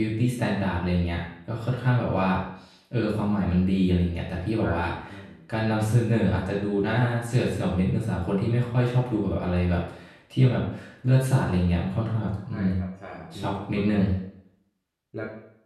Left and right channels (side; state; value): both; identical; correlation 1.00